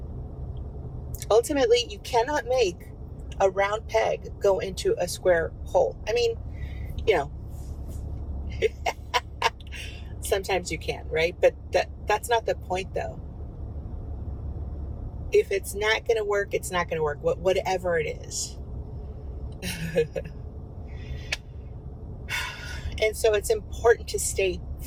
Ultimately, you cannot make a round peg go into a square hole. I mean, sometimes you can, right? But that's not the point, though. If it's not going to work, it's not going to work, whatever it is. And so it's important to stay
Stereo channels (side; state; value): both; identical; correlation 1.00